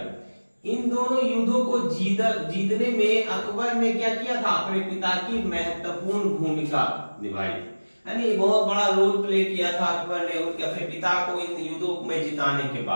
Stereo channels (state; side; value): inverted; both; correlation -1.00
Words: इन दोनों युद्धों को जीतने में अकबर ने क्या किया था? अपने पिता की महत्वपूर्ण भूमिका निभाई थी, यानी बहुत बड़ा रोल प्ले किया था अकबर ने उनके अपने पिता को इन युद्धों में जिताने के